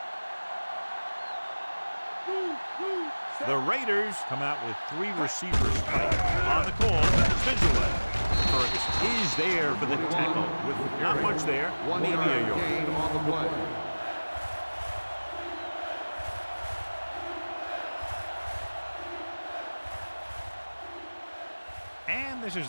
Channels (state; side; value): inverted; both; correlation -1.00